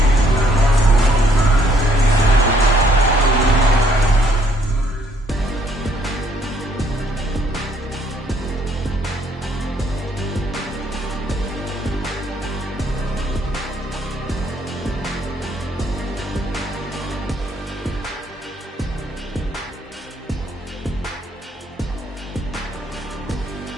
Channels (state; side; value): normal; both; correlation 0.67